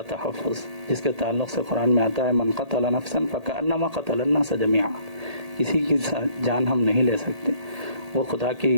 تحفظ، جس کے تعلق سے قرآن میں آتا ہے من قتل نفسا فکأنما قتل الناس جميعا. کسی کی جان ہم نہیں لے سکتے، وہ خدا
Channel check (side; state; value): left; late; 1.8 ms